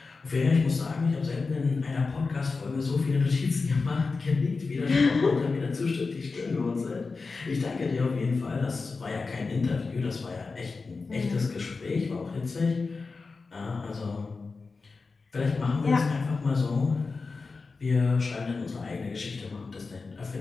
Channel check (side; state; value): right; quieter; 4.2 dB